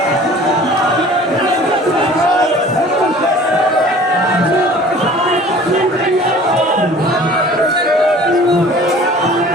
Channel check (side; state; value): both; normal; correlation 0.47